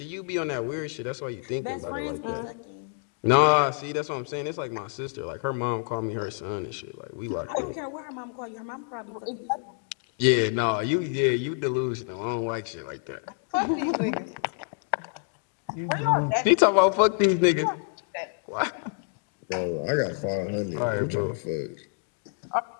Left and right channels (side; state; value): right; silent; 59 dB below the other